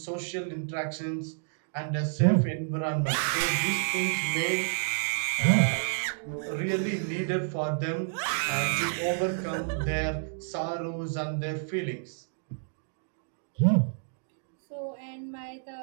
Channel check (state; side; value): silent; left; digital silence